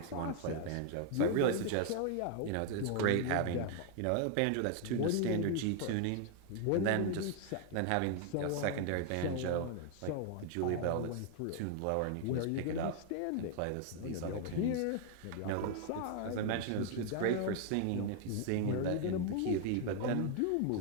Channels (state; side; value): different; both; correlation 0.00